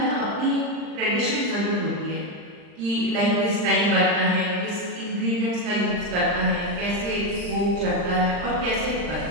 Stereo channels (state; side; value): late; left; 39 ms